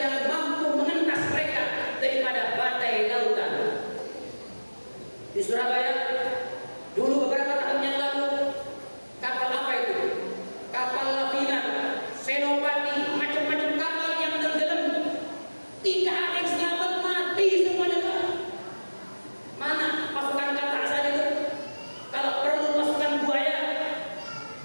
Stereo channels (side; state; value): both; inverted; correlation -1.00